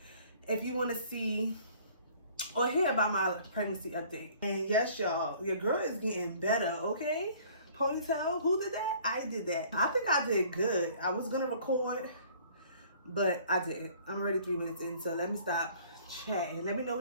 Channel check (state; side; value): inverted; both; correlation -0.54